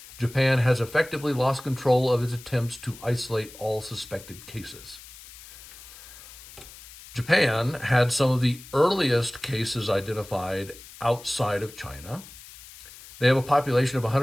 Japan has effectively lost control of its attempts to isolate all suspected cases." Japan had some of the earliest cases identified outside of China. They have a population of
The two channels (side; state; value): left; noise; hiss, 18 dB below the sound